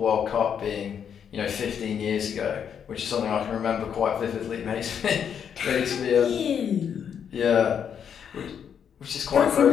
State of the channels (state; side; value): quieter; right; 7.9 dB